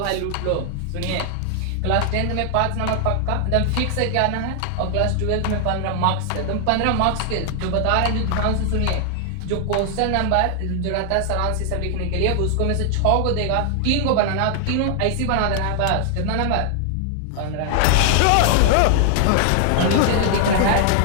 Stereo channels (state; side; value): different; both; correlation 0.00